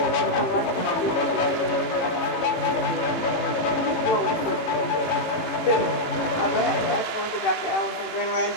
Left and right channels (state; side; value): late; right; 18 ms